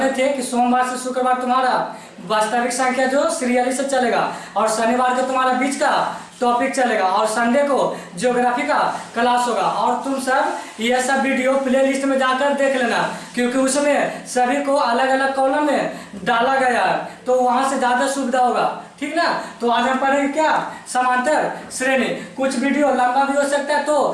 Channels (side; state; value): both; identical; correlation 1.00